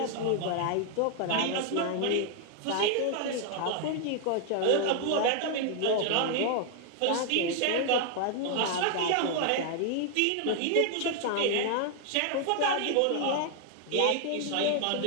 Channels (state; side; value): different; both; correlation 0.00